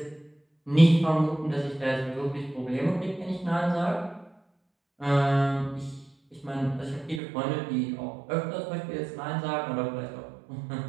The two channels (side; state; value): left; drops out; at 7.2 s